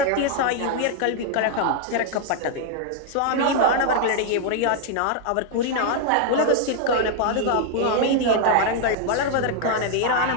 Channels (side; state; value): both; different; correlation 0.00